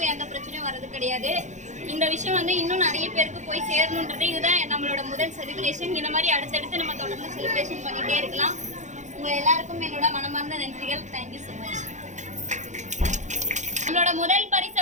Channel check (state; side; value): late; left; 0.35 ms